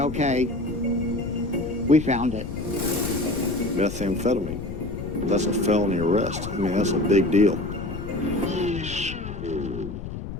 we found it. Methamphetamine. That's a felony arrest. I mean, that's a big deal.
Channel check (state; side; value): noise; left; rumble, 8 dB below the sound